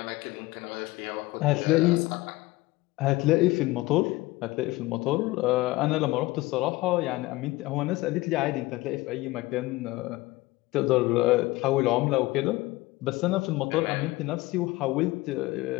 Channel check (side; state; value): right; quieter; 19.9 dB